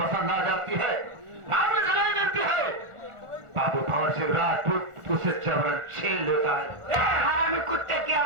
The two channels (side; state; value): left; late; 1.4 ms